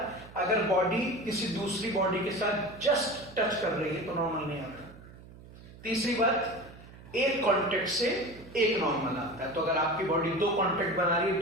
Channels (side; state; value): right; noise; hum, 19 dB below the sound